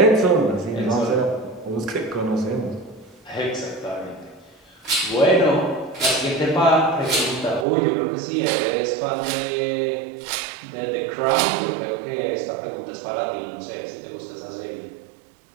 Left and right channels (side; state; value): left; drops out; at 7.7 s